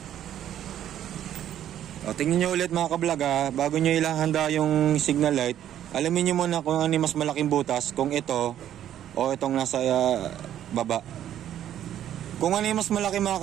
O, tingnan nyo ulit mga kablog ha. Bago nyo ilahanda yung signal light, alamin nyo muna kung ano yung mas malaking butas. Kung ito o itong nasa baba. Kung ano yung mas malaki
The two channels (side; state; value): left; quieter; 11.0 dB